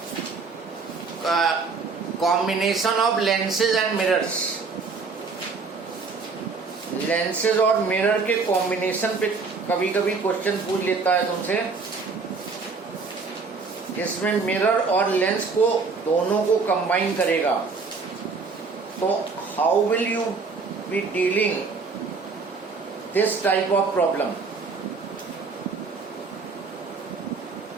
Combination of lenses and mirrors. Lenses और mirror के कॉम्बिनेशन पे कभी कभी क्वेश्चन पूछ लेता है तुमसे, जिसमें मिरर और लेंस को दोनों को कंबाइन करेगा। तो how will you be dealing this type of problem?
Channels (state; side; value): quieter; left; 4.6 dB